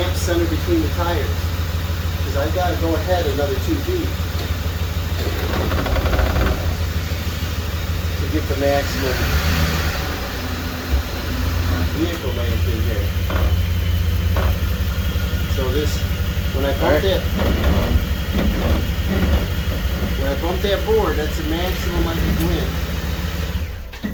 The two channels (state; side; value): identical; both; correlation 1.00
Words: centered between the tires? Because I've got to go ahead another 2 feet to get the maximum vehicle length in here. So this, when I bump that board, that's the maximum I can win.